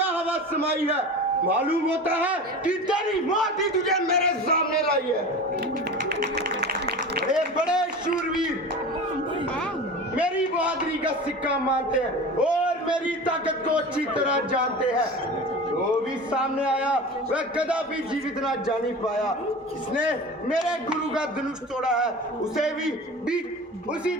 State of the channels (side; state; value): both; normal; correlation 0.33